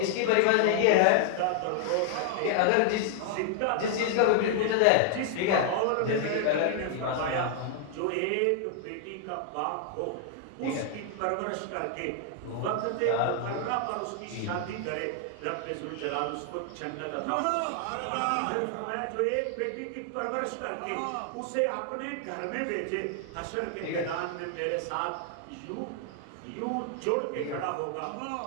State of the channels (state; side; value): different; both; correlation 0.00